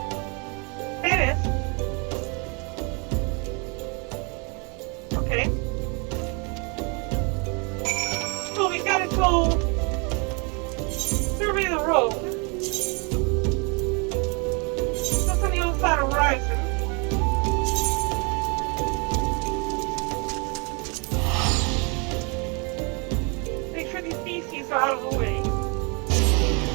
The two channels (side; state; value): left; quieter; 32.9 dB